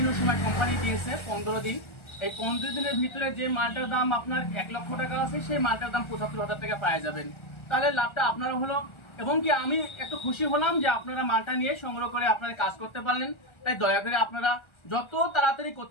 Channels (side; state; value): right; late; 1.4 ms